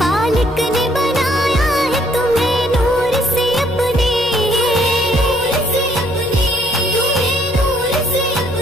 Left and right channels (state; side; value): normal; both; correlation 0.65